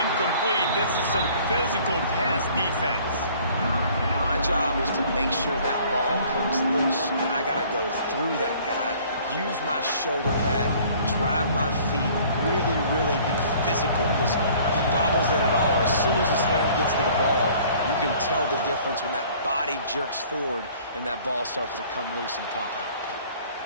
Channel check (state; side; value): inverted; both; correlation -0.54